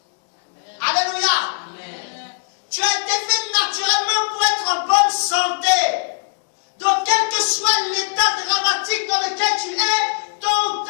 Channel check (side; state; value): right; silent; digital silence